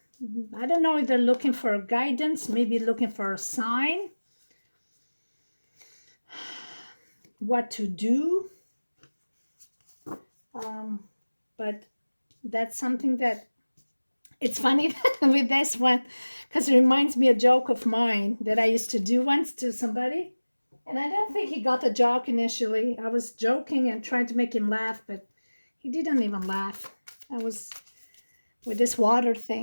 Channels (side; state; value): both; inverted; correlation -1.00